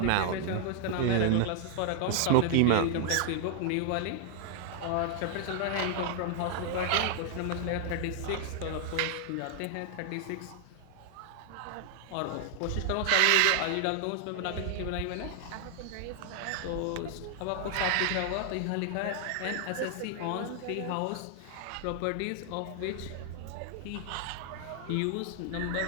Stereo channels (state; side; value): different; both; correlation 0.00